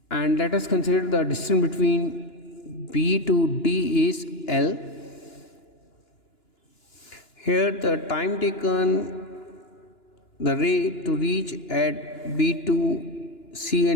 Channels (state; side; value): late; right; 2.9 ms